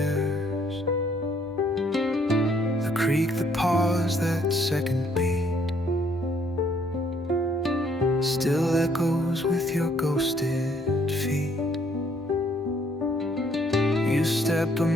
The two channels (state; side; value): normal; both; correlation 0.66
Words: Creak, the pause, that second beat still echoes with your ghosted feet. You step a